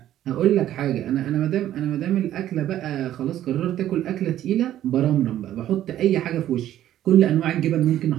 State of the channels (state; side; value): quieter; left; 12.4 dB